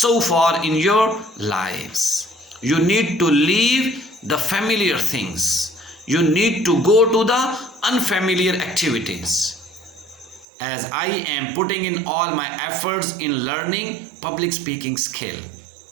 far in your lives. You need to leave the familiar things. You need to go to the unfamiliar activities. As I am putting in all my efforts in learning public speaking skill.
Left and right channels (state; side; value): drops out; left; at 10.5 s